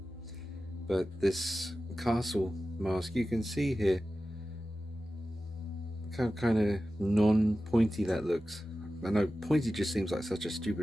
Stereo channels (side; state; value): both; normal; correlation 0.94